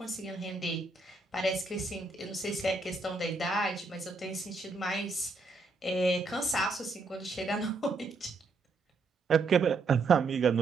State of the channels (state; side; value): quieter; left; 3.7 dB